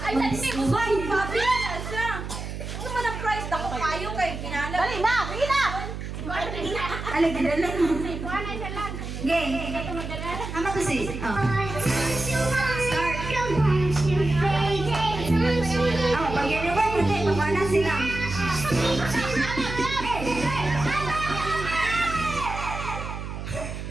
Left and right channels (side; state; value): right; noise; hum, 7 dB below the sound